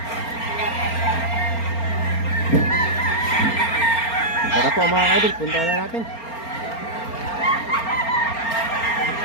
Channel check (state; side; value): late; right; 4.3 ms